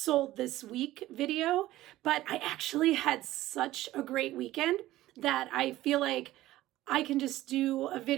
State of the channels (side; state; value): left; quieter; 15.8 dB